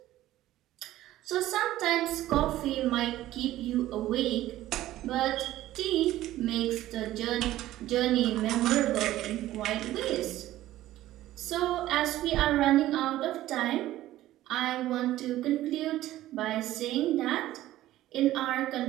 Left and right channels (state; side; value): quieter; left; 14.7 dB